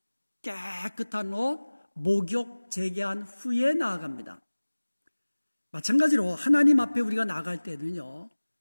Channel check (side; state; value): both; inverted; correlation -1.00